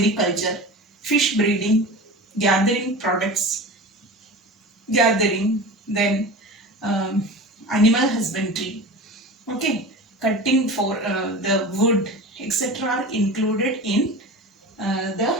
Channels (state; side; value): normal; both; correlation 0.32